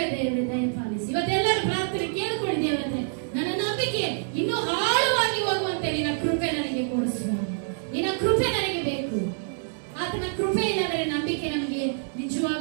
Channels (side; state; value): left; silent; 59 dB below the other